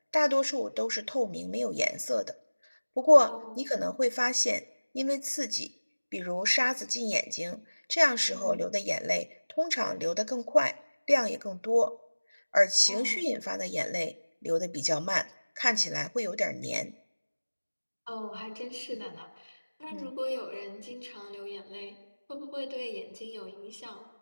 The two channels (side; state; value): both; inverted; correlation -1.00